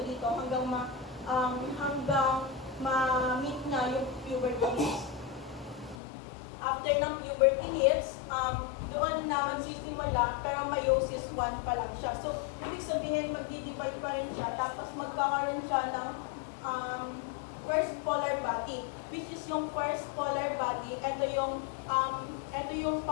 dito hanggang ma-meet niya yung puberty hits. After ng puberty hits, doon na magsisimula pero meiosis 1 pa lang siya. So, ibig sabihin magdi-divide pa rin siya tapos magkakaroon siya ng first polar body, which is yung first polar body, ito yung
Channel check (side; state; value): right; drops out; at 6.0 s